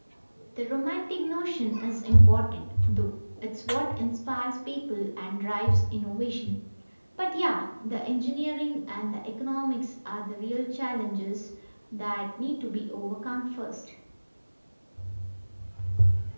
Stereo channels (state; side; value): inverted; both; correlation -1.00